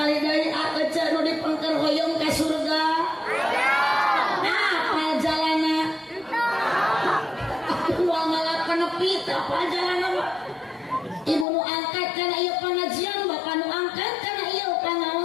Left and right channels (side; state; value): right; drops out; at 11.5 s